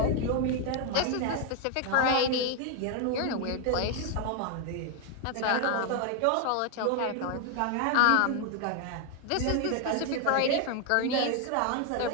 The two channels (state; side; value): different; both; correlation 0.01